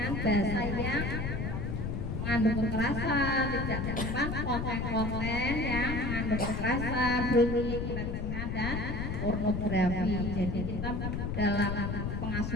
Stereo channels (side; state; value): left; noise; rumble, 2 dB below the sound